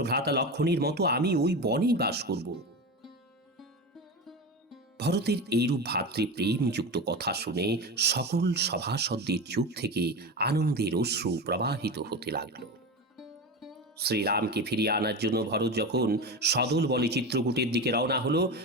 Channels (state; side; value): normal; both; correlation 0.23